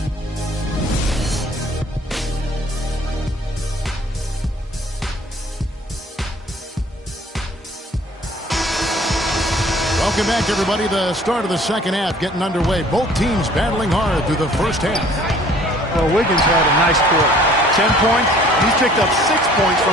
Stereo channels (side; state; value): both; normal; correlation 0.54